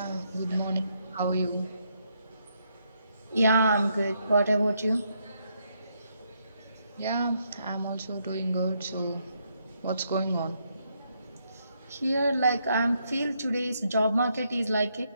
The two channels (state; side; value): inverted; both; correlation -0.76